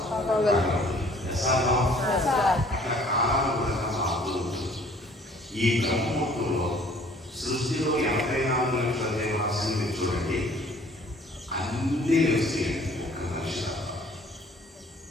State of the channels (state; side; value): normal; both; correlation 0.55